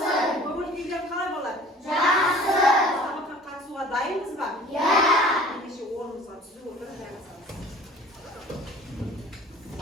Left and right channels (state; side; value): normal; both; correlation 0.47